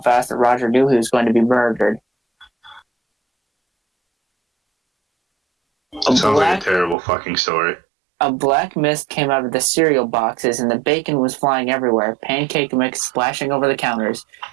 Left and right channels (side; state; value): left; drops out; at 7.0 s